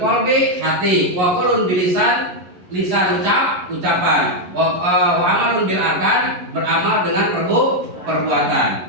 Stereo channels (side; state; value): left; late; 11 ms